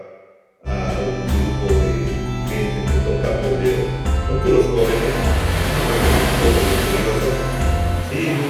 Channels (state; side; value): identical; both; correlation 1.00